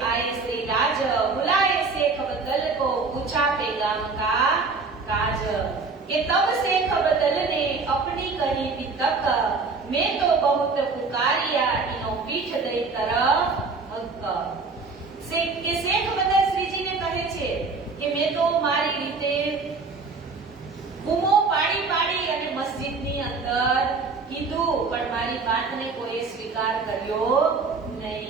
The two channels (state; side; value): quieter; left; 4.3 dB